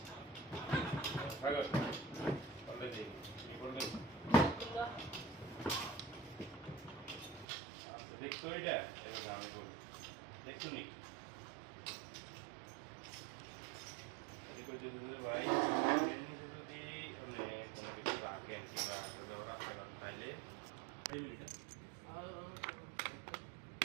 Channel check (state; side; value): drops out; left; at 7.5 s